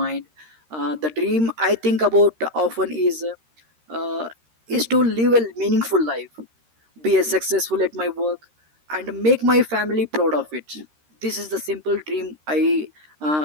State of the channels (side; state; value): left; late; 13 ms